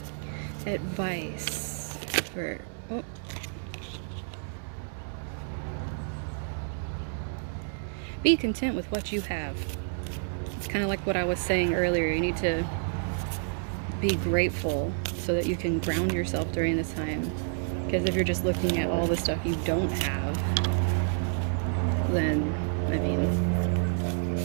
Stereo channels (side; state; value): left; silent; digital silence